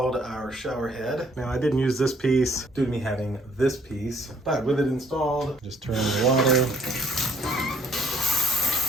our shower head. Now I didn't use this piece due to me having this piece, but with it installed, just turn the water.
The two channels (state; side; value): normal; both; correlation 0.63